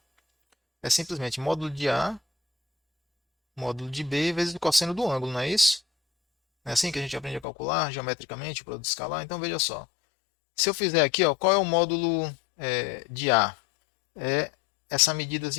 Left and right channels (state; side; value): drops out; right; at 7.5 s